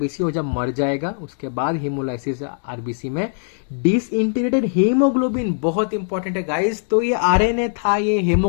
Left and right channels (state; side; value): silent; right; digital silence